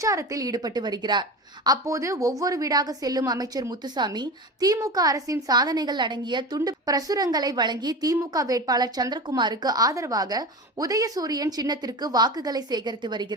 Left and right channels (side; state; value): both; normal; correlation 0.28